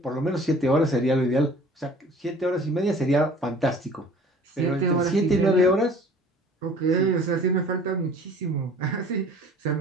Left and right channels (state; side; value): normal; both; correlation 0.49